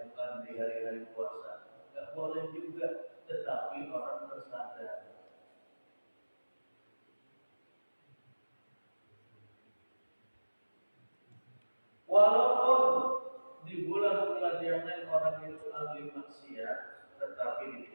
bukan di hari-hari puasa. Gak boleh juga, tetapi orang tersadar. Walaupun di bulan-bulan yang lain orang itu ahli maksiat, tetapi di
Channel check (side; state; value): both; inverted; correlation -1.00